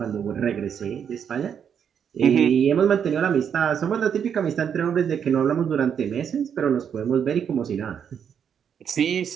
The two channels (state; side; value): quieter; left; 7.9 dB